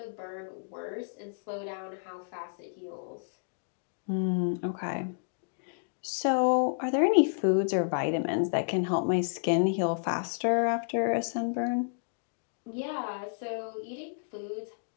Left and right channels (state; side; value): silent; right; digital silence